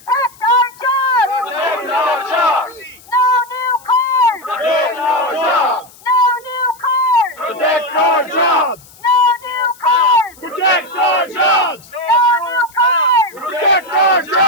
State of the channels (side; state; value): left; noise; hiss, 24 dB below the sound